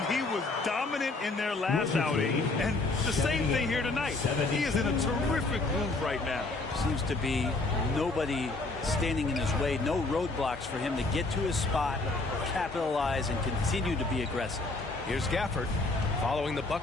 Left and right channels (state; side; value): quieter; right; 3.3 dB